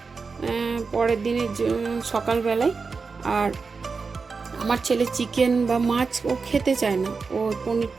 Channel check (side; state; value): left; quieter; 4.7 dB